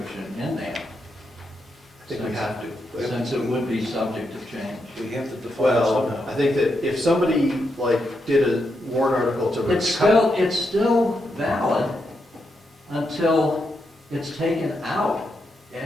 in there? I think we have to. Since it would be subject to change. We have to define it Well, I somehow. think that if somebody, did a warrant article to. It's still valid until it's taken out.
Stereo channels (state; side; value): normal; both; correlation 0.83